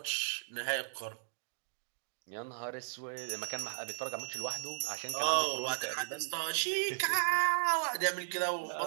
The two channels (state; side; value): silent; left; digital silence